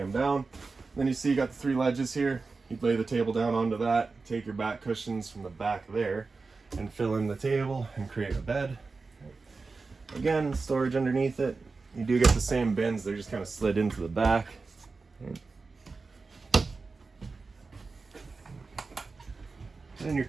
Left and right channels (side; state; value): left; quieter; 4.1 dB